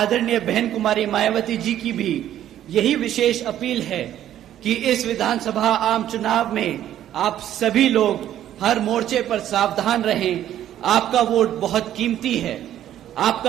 बहन कुमारी मायावती जी की भी यही विशेष अपील है कि इस विधानसभा आम चुनाव में आप सभी लोग हर मोर्चे पर सावधान रहें। आपका वोट बहुत कीमती है।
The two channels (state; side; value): quieter; left; 11.6 dB